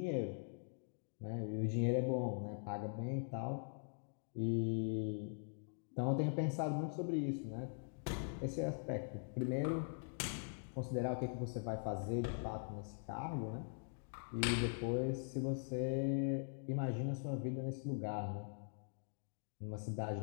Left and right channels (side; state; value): right; silent; digital silence